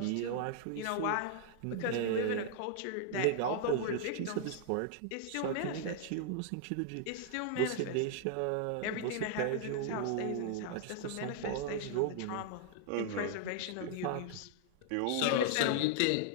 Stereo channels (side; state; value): both; different; correlation -0.01